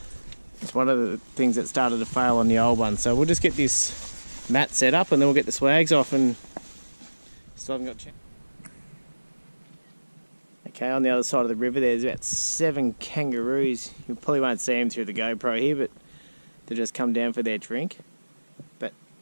is one of the things that started to fail on the old one. So we'll just get this mat set up and then we'll get the swags off, and still haven't got Okay, on the other side of the river there's about 7 kangaroos. You probably won't see them through the GoPro here, but they just come down for their drink. But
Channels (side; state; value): both; inverted; correlation -1.00